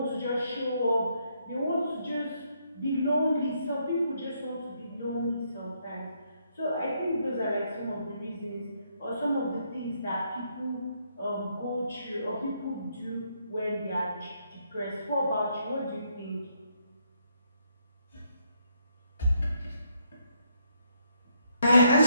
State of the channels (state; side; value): inverted; both; correlation -0.74